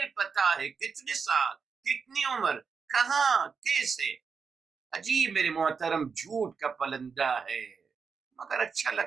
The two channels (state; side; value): quieter; left; 5.6 dB